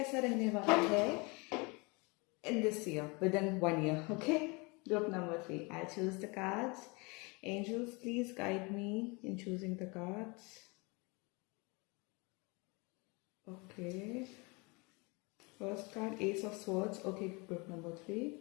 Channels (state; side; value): quieter; right; 28.4 dB